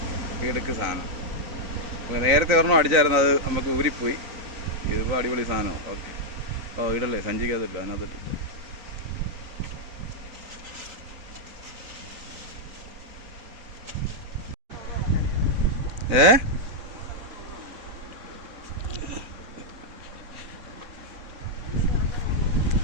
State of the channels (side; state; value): left; late; 3.9 ms